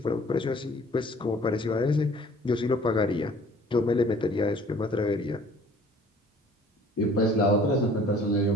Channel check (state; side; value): normal; both; correlation 0.53